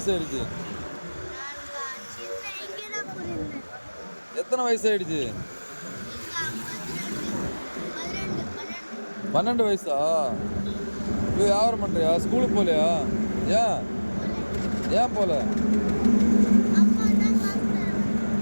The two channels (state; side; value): inverted; both; correlation -1.00